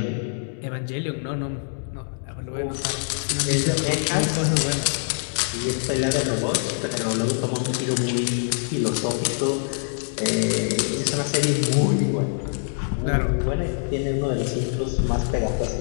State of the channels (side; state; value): right; silent; 62 dB below the other